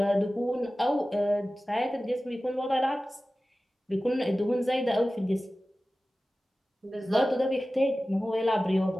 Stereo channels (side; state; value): both; normal; correlation 0.96